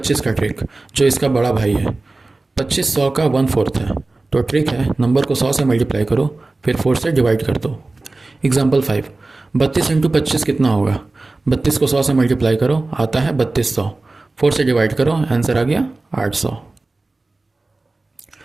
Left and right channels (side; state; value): left; quieter; 3.2 dB